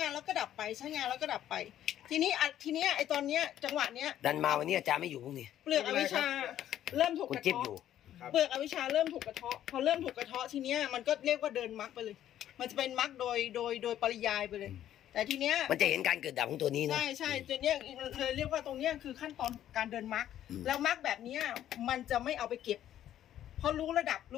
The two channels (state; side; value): quieter; right; 11.6 dB